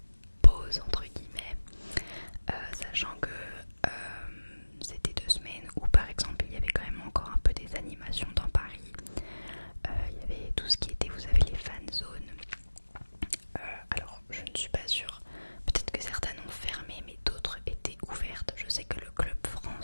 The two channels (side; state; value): both; inverted; correlation -1.00